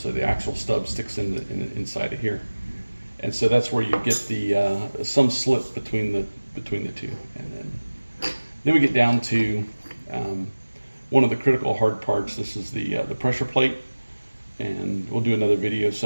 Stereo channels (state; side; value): inverted; both; correlation -1.00